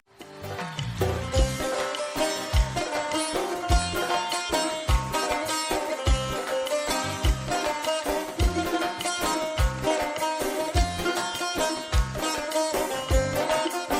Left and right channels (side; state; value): both; identical; correlation 1.00